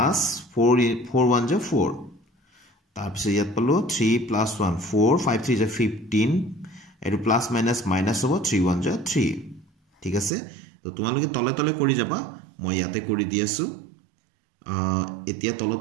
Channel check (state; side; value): drops out; left; at 10.3 s